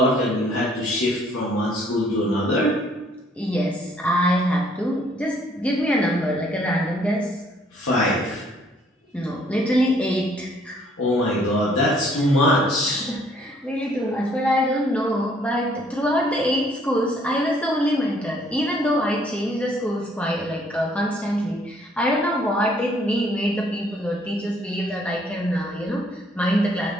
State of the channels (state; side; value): normal; both; correlation 0.63